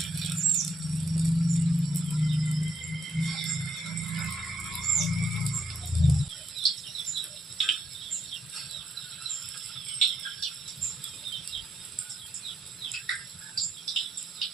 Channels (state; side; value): normal; both; correlation 0.76